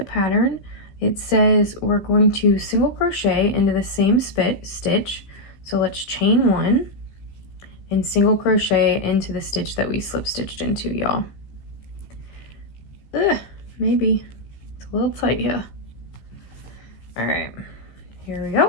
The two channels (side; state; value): right; late; 15 ms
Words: pattern. It says we're going to single crochet into the same stitch. So let's chain 1 and single crochet into the stitch that we slip stitched into, y'all. Maybe it's a little tight here. All right, here we